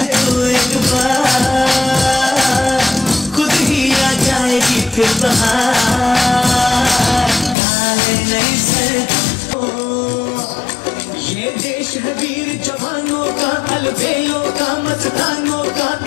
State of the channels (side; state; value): right; drops out; at 7.6 s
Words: फिर बहार नहीं से ये देश है वीर जवानों का अलबेलों का मस्तानों का